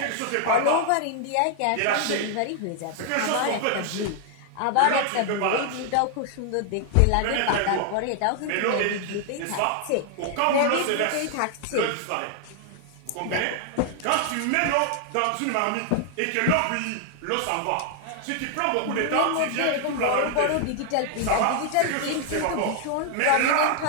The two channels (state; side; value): different; both; correlation 0.00